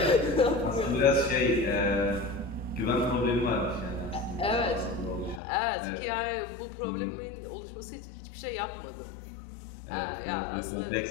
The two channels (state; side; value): drops out; right; at 5.4 s